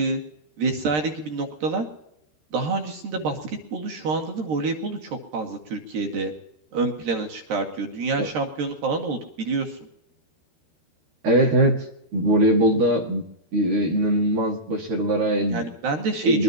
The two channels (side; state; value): left; late; 13 ms